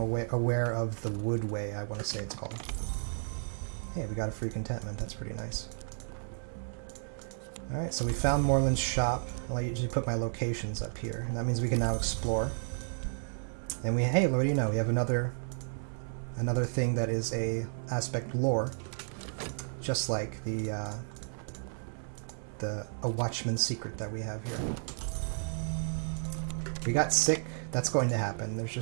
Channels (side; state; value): left; silent; 56 dB below the other